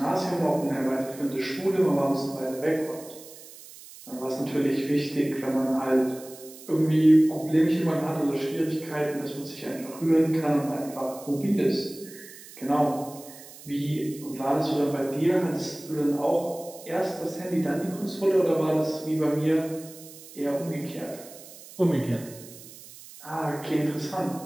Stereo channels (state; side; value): noise; right; hiss, 18 dB below the sound